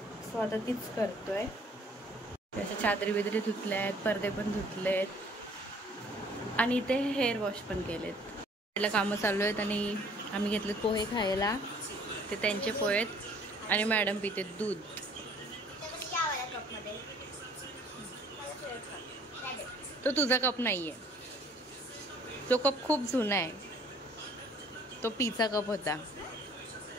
सो आता तीच करतोय. त्याच्या चादरी बिदरी धुतल्या आहेत, पडदे पण धुतले आहेत आणि इथे हेअर वॉश पण केलेत. त्याला कामं चालू आहेत आणि आम्ही घेतलेत पोहे खायला. ते त्यांचे पोहे आहेत आणि मॅडम पिते दूध. तो तुझा कप नाहीये, तो कप खूप जुना आहे. तो पीचा कप होता.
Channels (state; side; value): normal; both; correlation 0.57